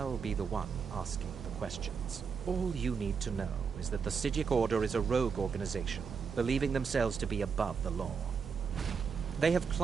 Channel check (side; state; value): left; quieter; 5.9 dB